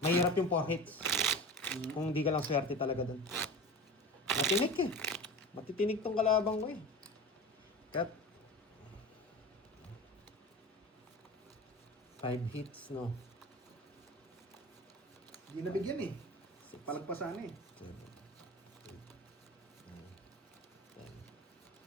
Mahirap yung 4 hits. Kung di ka lang swerte talaga dun. Matinik eh. Matitinig tong kalabang ko eh. Cut. 5 hits, no? Di nabigyan eh. Palagpasan eh. 7, 8, 9,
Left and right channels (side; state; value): both; normal; correlation 0.32